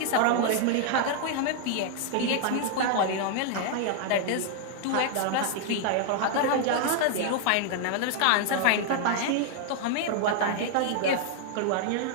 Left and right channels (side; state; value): both; different; correlation 0.00